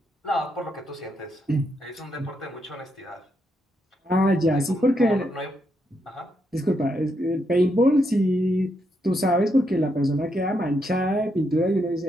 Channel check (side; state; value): both; normal; correlation 0.80